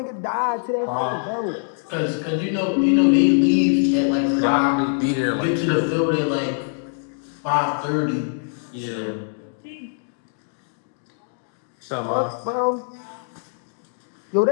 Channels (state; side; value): silent; right; 63 dB below the other